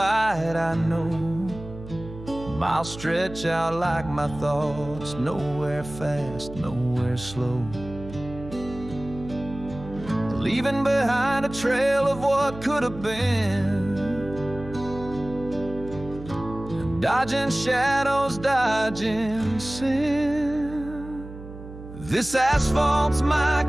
I know. Miles stretch out like my thoughts, nowhere fast, nowhere slow. Leaving behind a trail of what could have been, dodging shadows, dodging sin. This asphalt's my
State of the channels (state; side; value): noise; right; hum, 14 dB below the sound